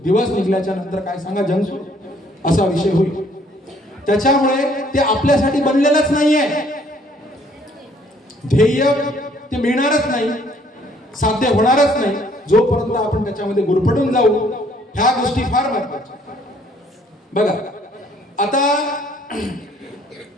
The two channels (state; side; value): normal; both; correlation 0.62